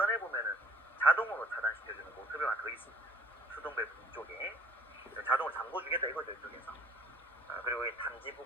보면은 자동으로 차단시켜주는 모터가 하나 더 있습니다. 수동 밸브 이쪽에 자동으로 잠궈주겠다 이거죠. 이쪽에서. 그리고 이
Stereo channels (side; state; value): both; normal; correlation 0.52